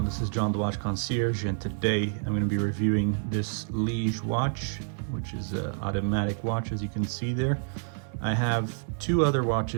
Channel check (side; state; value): left; silent; digital silence